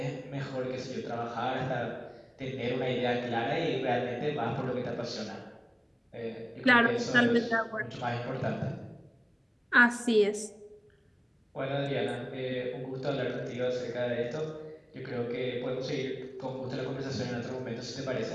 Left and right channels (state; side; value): identical; both; correlation 1.00